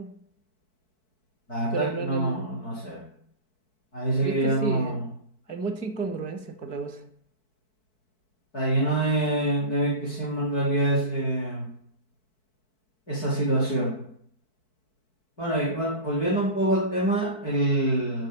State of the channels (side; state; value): right; late; 4.6 ms